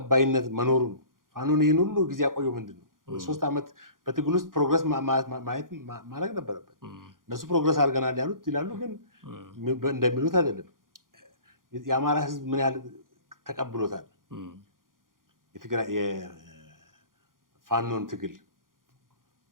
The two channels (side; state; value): left; late; 0.90 ms